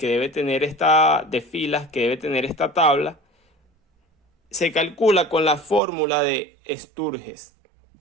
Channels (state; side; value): drops out; left; at 5.8 s